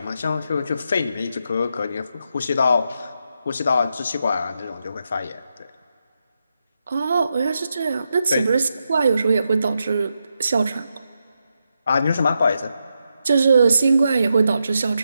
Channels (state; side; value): inverted; both; correlation -0.85